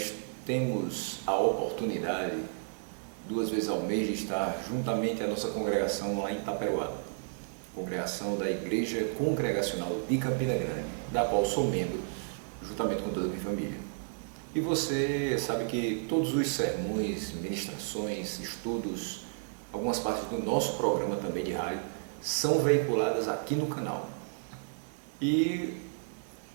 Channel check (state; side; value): silent; left; digital silence